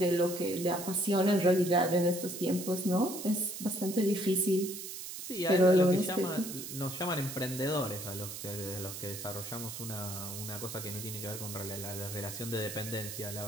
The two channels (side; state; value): right; noise; hiss, 8 dB below the sound